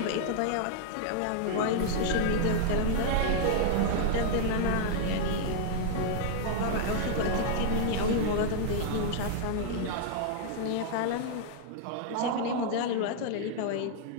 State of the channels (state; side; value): different; both; correlation -0.01